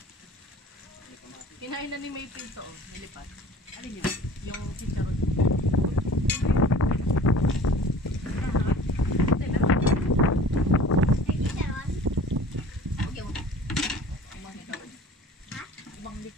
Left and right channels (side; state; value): both; normal; correlation 0.45